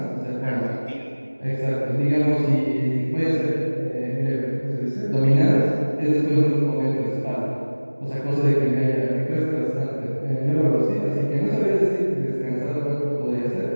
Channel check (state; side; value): inverted; both; correlation -1.00